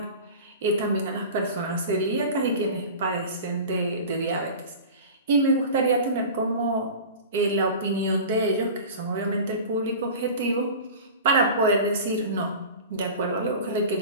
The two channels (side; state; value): both; inverted; correlation -0.35